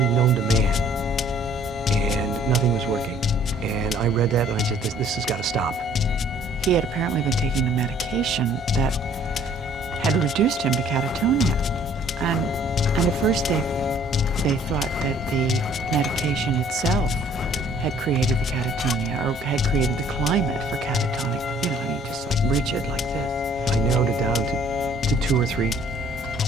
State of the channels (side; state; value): both; normal; correlation 0.57